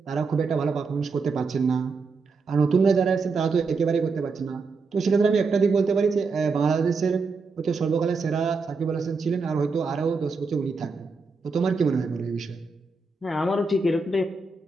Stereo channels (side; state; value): left; quieter; 4.3 dB